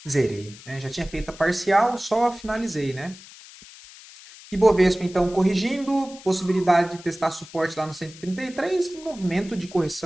Zerei, né? Já tinha feito a parcial, só finalizei, né? Ibovespa, então, corrigindo, possibilidade de testar suporte lá no 133, um movimento de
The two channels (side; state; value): left; noise; hiss, 19 dB below the sound